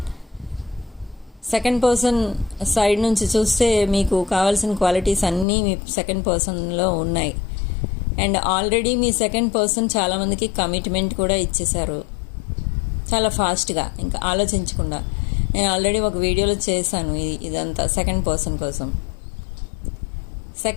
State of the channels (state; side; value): drops out; right; at 5.5 s